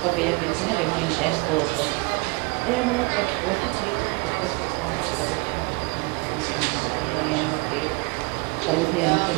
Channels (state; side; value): quieter; left; 28.5 dB